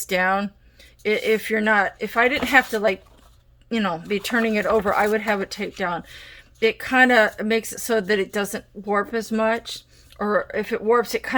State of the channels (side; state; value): both; identical; correlation 1.00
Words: down. If I didn't have to, like, you know, be turning it over, I would have it taped down. It kind of makes it so that it doesn't warp as much. Or if it warps, it